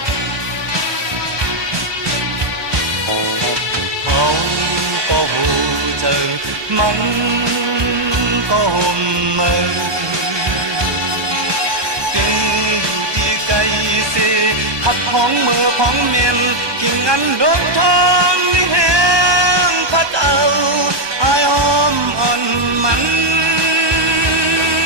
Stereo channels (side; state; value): left; late; 1.2 ms